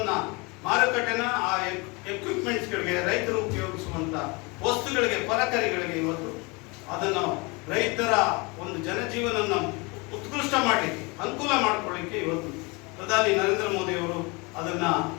ಮಾರುಕಟ್ಟೆನ ಆ ಎಕ್ವಿಪ್ಮೆಂಟ್ಸ್ಗಳಿಗೆ, ರೈತರು ಉಪಯೋಗಿಸುವಂತ ವಸ್ತುಗಳಿಗೆ, ಪರಕರಿಗಳಿಗೆ ಇವತ್ತು ಅದನ್ನು ರೈತರ ಒಂದು ಜನಜೀವನವನ್ನು ಉತ್ಕೃಷ್ಟ ಮಾಡಲಿಕ್ಕೆ, ಅನುಕೂಲ ಮಾಡಿಕೊಳ್ಳಿಕ್ಕೆ ಇವತ್ತು ಪ್ರಧಾನಿ ನರೇಂದ್ರ ಮೋದಿ ಅವರು ಅದನ್ನ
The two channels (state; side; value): quieter; right; 27.6 dB